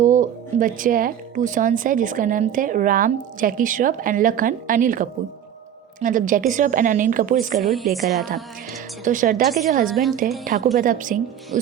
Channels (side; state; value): left; quieter; 9.7 dB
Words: बच्चे हैं, 2 सन्स है जिसका नाम थे राम जैकी श्रॉफ एंड लखन अनिल कपूर। मतलब जैकी श्रॉफ एंड अनिल कपूर इसका रोल प्ले कर रहा था। तो श्रद्धा के जो हस्बैंड थे ठाकुर प्रताप सिंह,